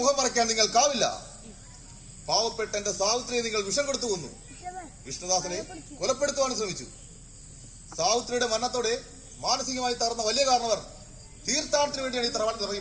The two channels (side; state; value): both; identical; correlation 1.00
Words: മറയ്ക്കാൻ നിങ്ങൾക്കാവില്ല. പാവപ്പെട്ട എന്റെ സാവിത്രിയെ നിങ്ങൾ വിഷം കൊടുത്തു കൊന്നു. വിഷ്ണുദാസനെ കൊലപ്പെടുത്തുവാൻ ശ്രമിച്ചു. സാവിത്രിയുടെ മരണത്തോടെ മാനസികമായി തകർന്ന വലിയ കാരണവർ തീർത്ഥാടനത്തിന് വേണ്ടിയാണ് ഈ തറവാട്ടിൽ